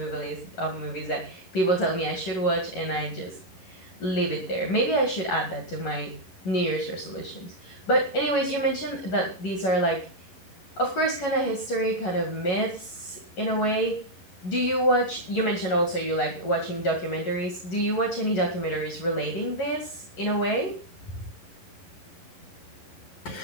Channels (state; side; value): late; right; 11 ms